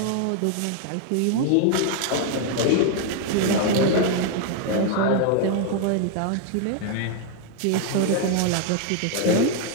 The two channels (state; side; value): different; both; correlation 0.00